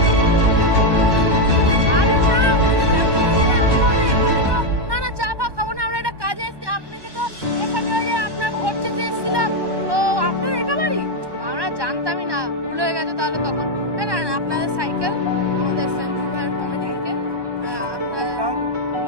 আরে না, না না, চা ফা খাবো না, আমরা একটা কাজে এসেছি, আপনাকে তো এখানে ওই যে আপনার ভোট চেতে এসেছিলাম, তো আপনার এটা বাড়ি? আমরা জানতামই না, ভুল হয়ে গেছে তাহলে তখন। না না না, আপনাদের সাইকেল আমাদের সঞ্জু ভাইয়ের কমিটি থেকে আপনারা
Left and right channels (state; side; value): late; left; 1.2 ms